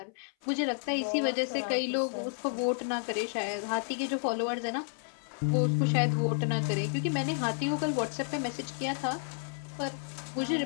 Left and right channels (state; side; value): silent; right; 57 dB below the other